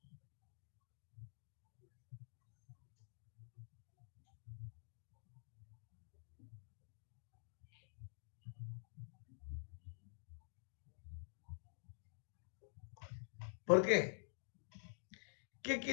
¿Por qué? ¿Qué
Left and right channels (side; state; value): right; silent; digital silence